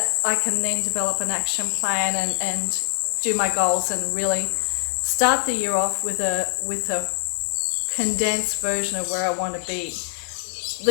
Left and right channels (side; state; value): right; silent; 63 dB below the other